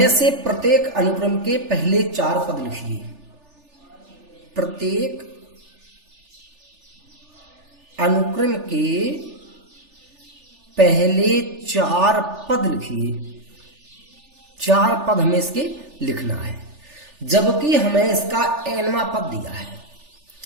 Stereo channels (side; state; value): left; late; 3.4 ms